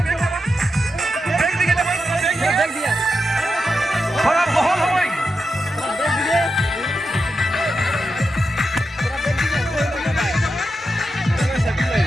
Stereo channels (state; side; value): normal; both; correlation 0.88